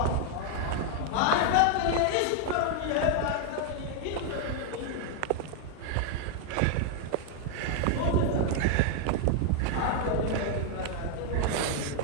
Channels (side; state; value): both; different; correlation 0.00